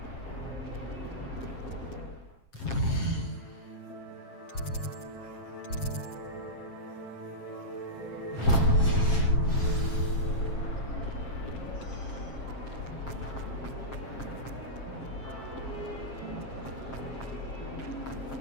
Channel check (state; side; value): late; right; 7.5 ms